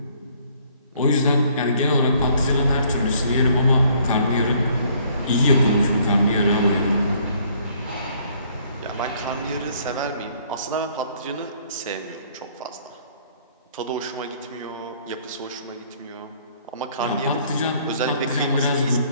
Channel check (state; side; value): inverted; both; correlation -0.62